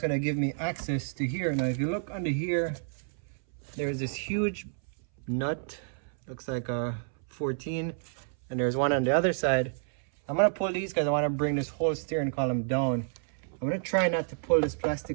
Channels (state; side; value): silent; left; 58 dB below the other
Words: give me access to here. Now if you look under here, there's this huge nut, looks like a 14, and there's one on the other side. I'm gonna pull these because I want to bring this whole steering column down. I'm gonna try not to pull this